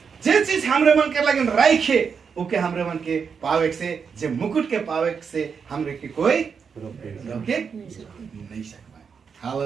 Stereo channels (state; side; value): quieter; left; 6.2 dB